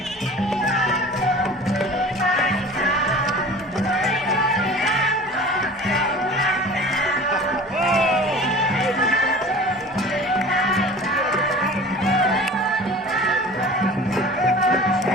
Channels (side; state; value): both; normal; correlation 0.41